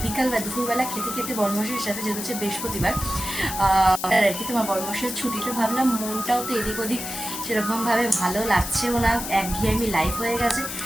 বিকাল বা দুপুরবেলা খেতে খেতে বর্মশের সাথে, যেহেতু হচ্ছে বৃহস্পতিবার আর কি তোমার বর্মশের ছুটিটা, ভাবলাম মনটাও তো এদিক ওদিক সেরকমভাবে ভালো লাগছেও না, একঘেয়েমি লাইফ হয়ে গেছে।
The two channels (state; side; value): noise; left; hiss, 6 dB below the sound